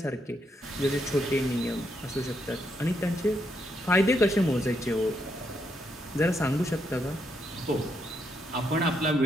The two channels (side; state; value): both; normal; correlation 0.78